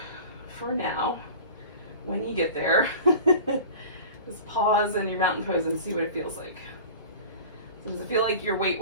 for now, when you get there, just pause in your mountain pose and see what it feels like. So does it feel like your weight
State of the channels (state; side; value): inverted; both; correlation -0.38